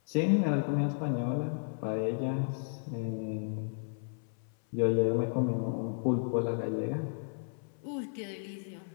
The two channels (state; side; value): silent; right; 56 dB below the other